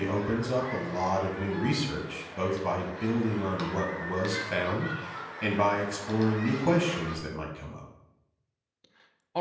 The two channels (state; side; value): identical; both; correlation 1.00